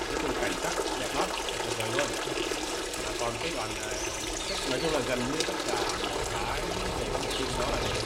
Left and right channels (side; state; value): both; identical; correlation 1.00